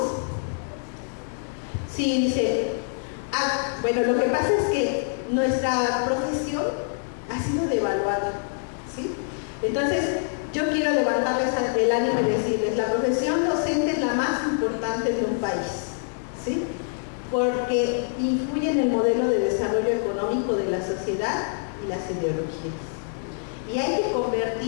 Sí, dice, bueno, lo que pasa es que nuestra profesión ha sido devaluada, ¿sí? Entonces, yo quiero levantarles el ánimo y decirles, la profesión docente es la más importante de un país, ¿sí? Porque influye en el modelo de desarrollo económico de la sociedad y las ideologías. Y hay que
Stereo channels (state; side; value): silent; right; digital silence